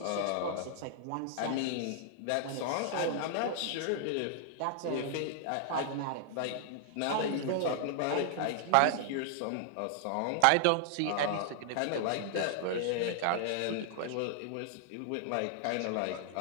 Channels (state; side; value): different; both; correlation -0.01